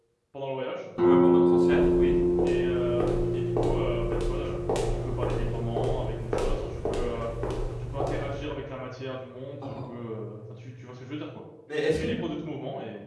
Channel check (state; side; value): identical; both; correlation 1.00